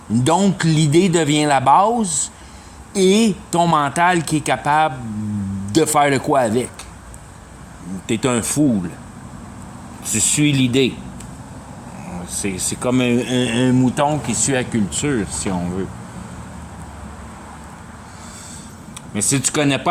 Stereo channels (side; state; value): both; identical; correlation 1.00